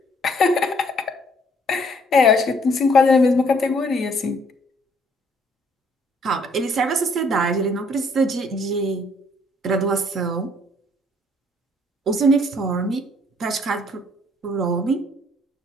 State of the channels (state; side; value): normal; both; correlation 0.64